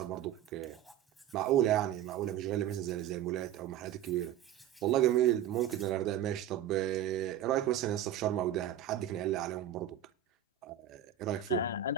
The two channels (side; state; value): left; quieter; 10.4 dB